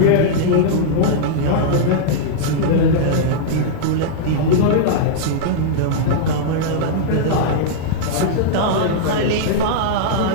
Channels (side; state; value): both; different; correlation -0.02